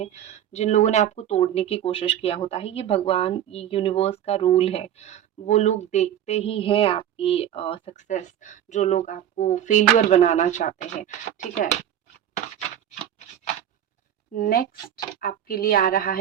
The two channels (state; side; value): quieter; left; 10.6 dB